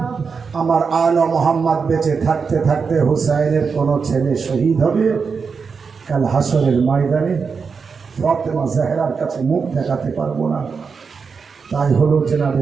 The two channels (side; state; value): left; quieter; 5.4 dB